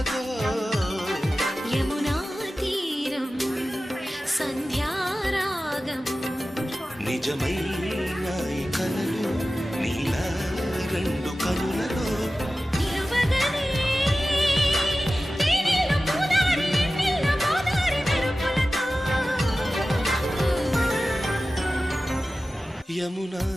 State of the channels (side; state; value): both; normal; correlation 0.95